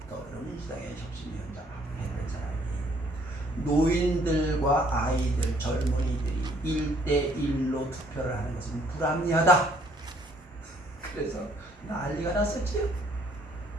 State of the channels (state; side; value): normal; both; correlation 0.63